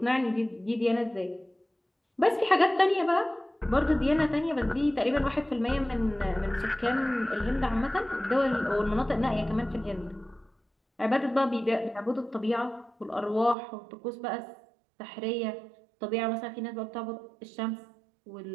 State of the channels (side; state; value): left; drops out; at 13.6 s